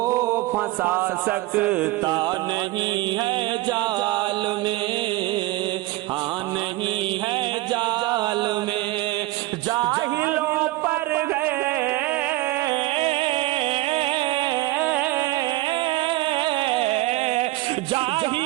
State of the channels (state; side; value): quieter; left; 18.7 dB